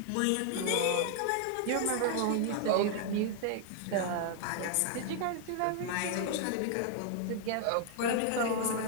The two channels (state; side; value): different; both; correlation 0.00